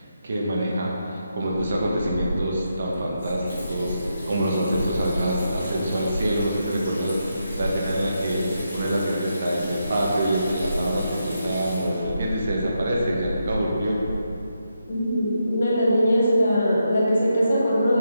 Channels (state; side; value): inverted; both; correlation -0.83